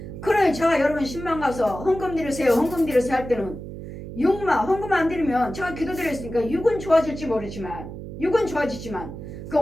그러니 제가 여러분 신방 가서 헌금 드리세요 할 때는 육만 헌금 안 드리면 제가 기도드렸으니까 육은 좋아질지 모르지만 육은 좋아지지만 그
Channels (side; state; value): right; noise; hum, 10 dB below the sound